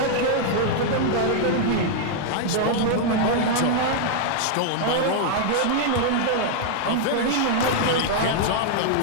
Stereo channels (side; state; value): both; different; correlation 0.00